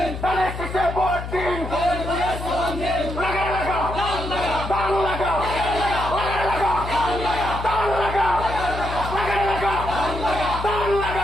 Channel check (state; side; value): noise; left; hum, 7 dB below the sound